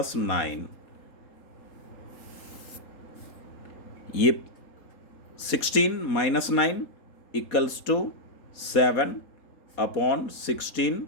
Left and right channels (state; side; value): late; right; 4.2 ms